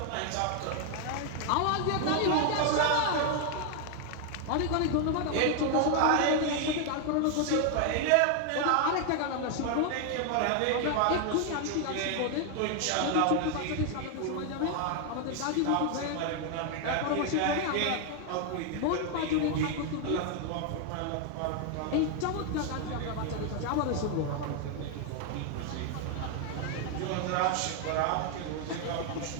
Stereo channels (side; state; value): both; different; correlation 0.01